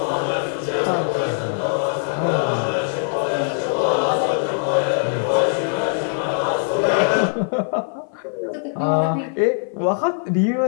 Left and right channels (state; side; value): silent; right; 56 dB below the other